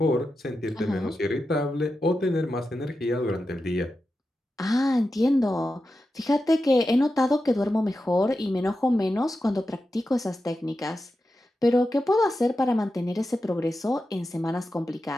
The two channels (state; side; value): normal; both; correlation 0.90